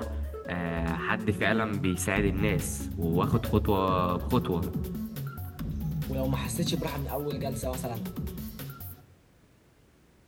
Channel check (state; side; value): identical; both; correlation 1.00